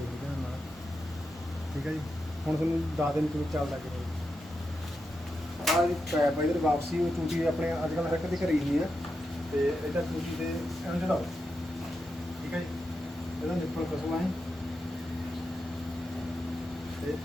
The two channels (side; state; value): both; normal; correlation 0.87